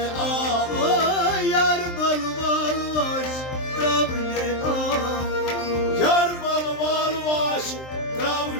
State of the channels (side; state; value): right; late; 23 ms